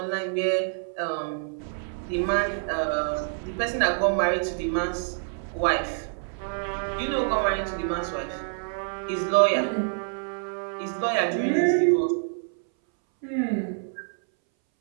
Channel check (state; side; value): silent; left; 60 dB below the other